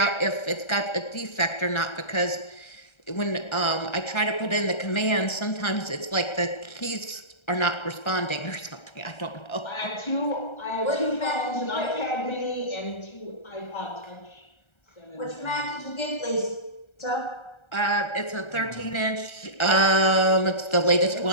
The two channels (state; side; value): late; right; 1.3 ms